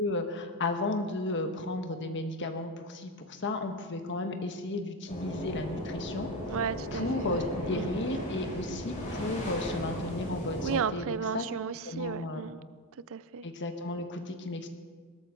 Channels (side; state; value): both; normal; correlation 0.15